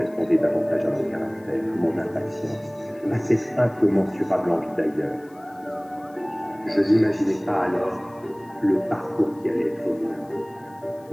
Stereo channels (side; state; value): left; noise; hiss, 29 dB below the sound